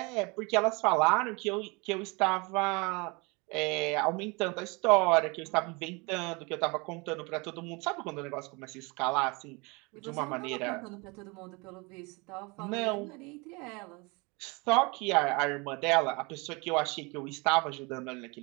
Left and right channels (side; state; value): left; quieter; 28.0 dB